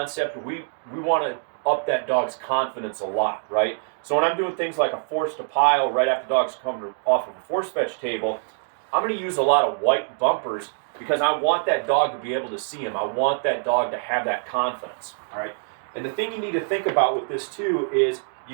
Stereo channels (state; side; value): silent; left; 62 dB below the other